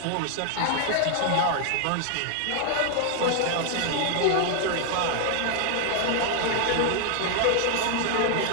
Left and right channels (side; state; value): both; different; correlation 0.00